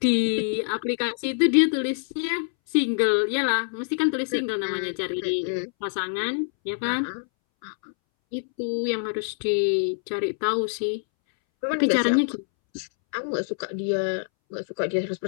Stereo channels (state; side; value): silent; right; 61 dB below the other